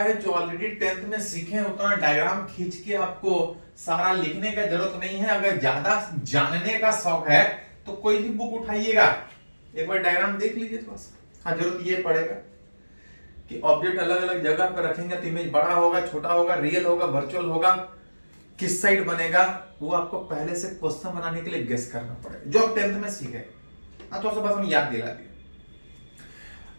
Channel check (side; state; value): both; inverted; correlation -1.00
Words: जो ऑलरेडी 10th में सीखे हैं, उतना डायग्राम खींच के आपको सारा लिखने का जरूरत नहीं है। अगर ज्यादा जानने का शौक है तो कोई भी बुक उठाइएगा, एक बार डायग्राम देख लीजिए थोड़ा सा। हाँ, जरूरत ये पड़ेगा कि ऑब्जेक्ट अलग अलग जगह पर रखेंगे तो इमेज बड़ा होगा, छोटा होगा, रियल होगा, वर्चुअल होगा, किस साइड बनेगा, वो आपको पहले से क्वेश्चन बनाने के लिए गेस करना पड़ेगा, जो आप 10th में सीखे। थोड़ा सा बस हम याद दिला दिए।